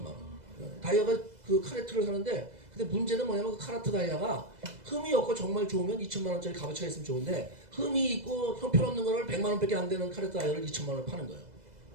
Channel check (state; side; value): late; left; 2.0 ms